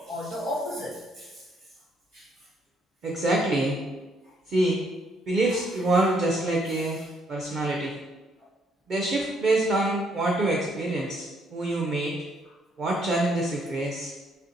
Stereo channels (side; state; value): both; normal; correlation 0.70